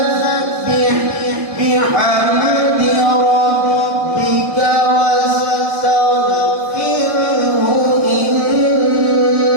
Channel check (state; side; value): late; left; 1.7 ms